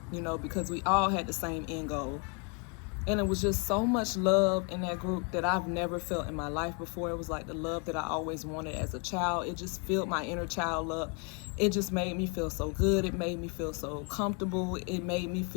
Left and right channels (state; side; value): quieter; right; 36.0 dB